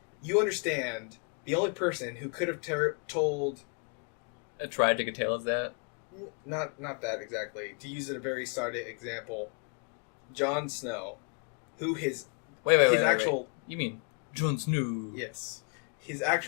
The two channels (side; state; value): right; quieter; 39.3 dB